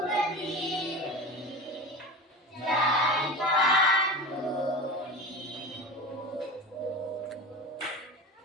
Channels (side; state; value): both; normal; correlation 0.30